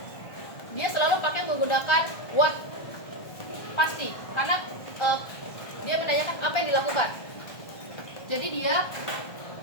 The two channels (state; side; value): late; right; 1.2 ms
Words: dia selalu pakai menggunakan what, pasti, karena dia menanyakan apa yang dilakukan. Jadi dia